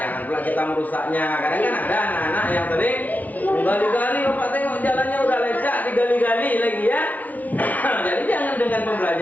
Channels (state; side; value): late; right; 0.074 ms